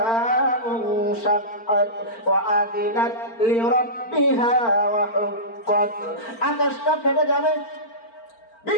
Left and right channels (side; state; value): right; late; 4.4 ms